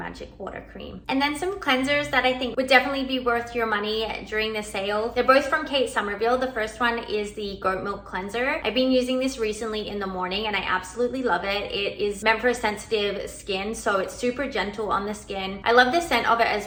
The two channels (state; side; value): identical; both; correlation 1.00